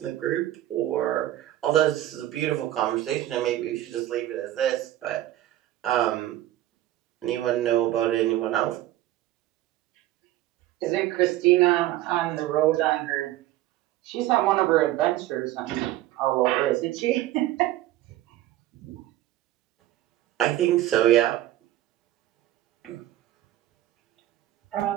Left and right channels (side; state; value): left; quieter; 14.5 dB